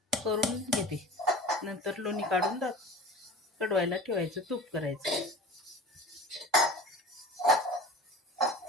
करून घेते. नंतर लोणी काढून कडवायला ठेवायचं. तूप करायचं.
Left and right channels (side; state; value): both; normal; correlation 0.38